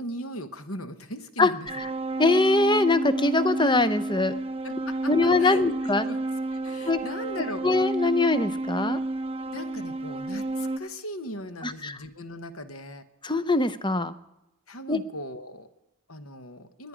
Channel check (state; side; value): normal; both; correlation 0.52